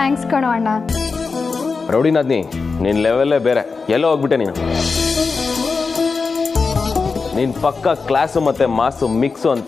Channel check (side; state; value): right; quieter; 4.6 dB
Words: ಕಣೋ ಅಣ್ಣ. ರೌಡಿನಾದ್ನಿ, ನಿನ್ನ ಲೆವೆಲ್ಲೇ ಬೇರೆ. ಎಲ್ಲೋ ಹೋಗ್ಬಿಟ್ಟೆ ನೀನು. ನೀನು ಪಕ್ಕ ಕ್ಲಾಸು ಮತ್ತು ಮಾಸು ಮಿಕ್ಸು